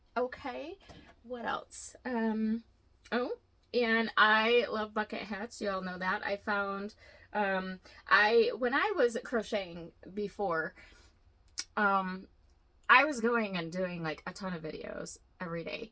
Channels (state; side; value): identical; both; correlation 1.00